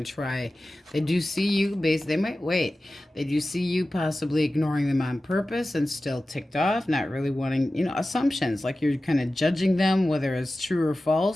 to try. They do see you, they might wait. They do see you possibly ignoring them on purpose and still ticked off, not really wanting, assumptions, like you're kind of judging them, whether it's true or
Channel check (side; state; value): both; normal; correlation 0.95